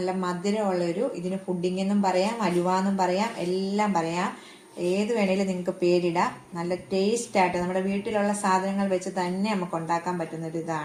മധുരമുള്ളൊരു, ഇതിന് പുഡിംഗ് എന്നും പറയാം, അലുവ എന്നും പറയാം, എല്ലാം പറയാം. ഏത് വേണേലും നിങ്ങൾക്ക് പേരിടാം. നല്ല ടേസ്റ്റ് ആയിട്ട് നമ്മുടെ വീട്ടിലുള്ള സാധനങ്ങൾ വെച്ച് തന്നെ നമുക്ക് ഉണ്ടാക്കാൻ പറ്റുന്ന ഒരു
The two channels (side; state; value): both; identical; correlation 1.00